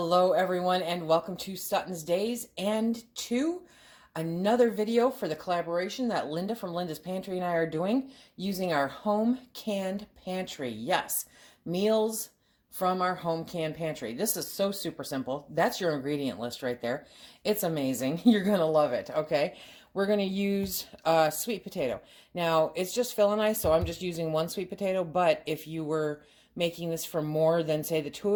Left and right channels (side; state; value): both; identical; correlation 1.00